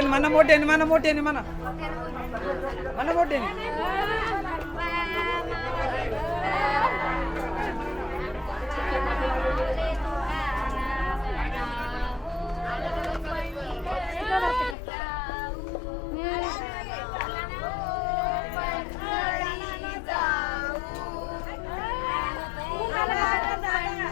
म्हणा, मोठ्याने म्हणा, मोठ्याने म्हणा, म्हणा मोठ्याने.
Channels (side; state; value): right; drops out; at 14.8 s